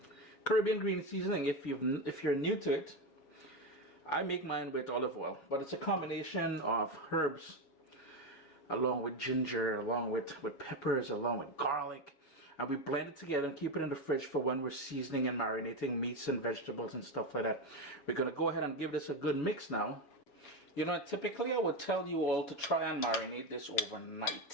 Caribbean green seasoning, if you're new to it, I make mine with olive oil, but it's a combination of herbs along with ginger, along with peppers, along with garlic, and we blend it together and keep it in the fridge for when we're seasoning and marinating meats and vegetables and stuff like that. We're gonna go ahead and give this a good mix now. You know, typically I would tell you all to try and marinate this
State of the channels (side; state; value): right; late; 7.3 ms